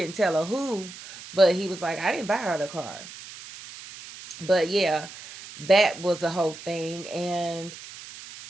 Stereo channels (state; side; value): noise; right; hiss, 15 dB below the sound